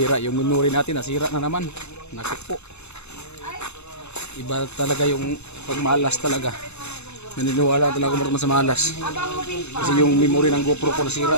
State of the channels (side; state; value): right; late; 0.81 ms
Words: yung memory natin nasira na naman. Naku po. Iba talaga yung pagmalas talaga. Naniniwala talaga ako sa malas. Kasi yung memory ng GoPro ko